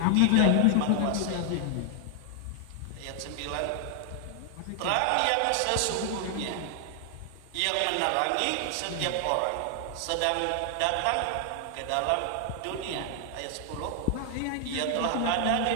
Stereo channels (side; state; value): both; different; correlation 0.00